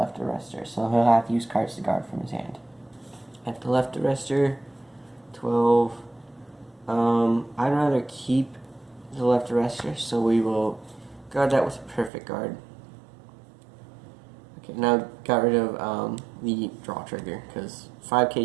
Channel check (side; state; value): left; drops out; at 12.1 s